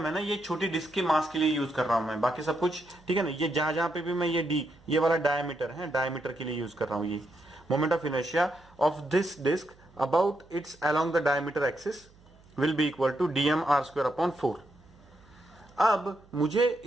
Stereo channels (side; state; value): right; noise; hum, 27 dB below the sound